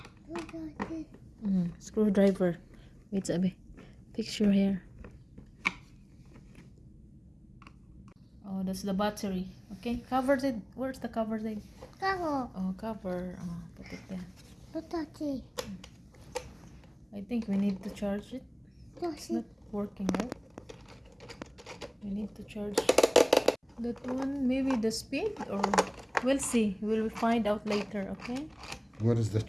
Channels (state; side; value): identical; both; correlation 1.00